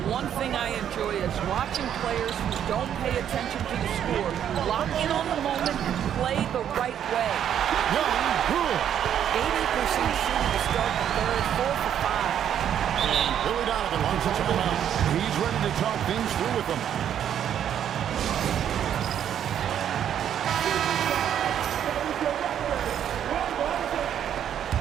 One thing I enjoy is watching players who don't pay attention to the score lock in on the moment and play the right way. Young, good. 80% shooting to start the third, 4 for 5. And Billy Donovan wants a timeout. He's ready to talk things through with them.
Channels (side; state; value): left; quieter; 9.6 dB